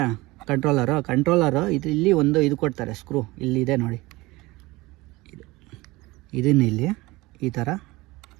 ಕಂಟ್ರೋಲರು ಇಲ್ಲಿ ಒಂದು ಇದು ಕೊಡ್ತಾರೆ, ಸ್ಕ್ರೂ ಇಲ್ಲಿದೆ ನೋಡಿ. ಇದನ್ನು ಇಲ್ಲಿ ಈ ಥರ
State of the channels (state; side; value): quieter; left; 21.2 dB